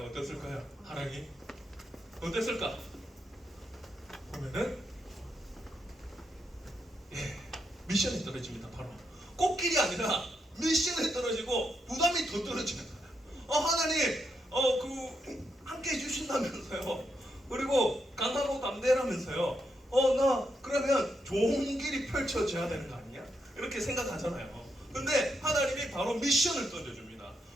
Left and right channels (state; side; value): normal; both; correlation 0.81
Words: 어땠을까요? 하락이 어땠을까? 보면은 미션이 떨어집니다. 바로 꽃길이 아니라 미션이 떨어지고 부담이 더 떨어지는 거예요. 하나님 함께 해주신다면서요. 그리고 강하고 또 담대라면서요. 나 그러면 좋은 길이 펼쳐져야 되는 거 아니야? 이렇게 생각하잖아요. 근데 하나님이 바로 미션을 던져줍니다.